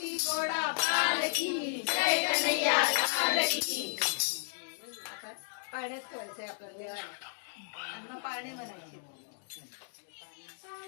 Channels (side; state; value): right; silent; digital silence